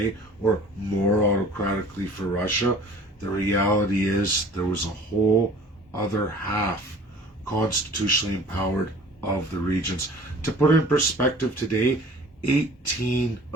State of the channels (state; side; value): normal; both; correlation 0.47